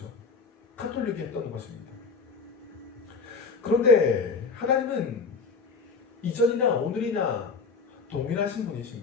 카톨릭이 했던 것입니다. 그런데 하나님은 이전이나 오늘이나 동일하신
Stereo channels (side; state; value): right; quieter; 4.8 dB